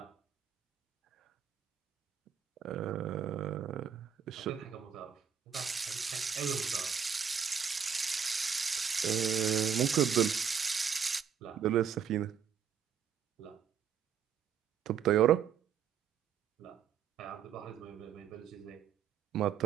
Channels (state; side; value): quieter; left; 7.7 dB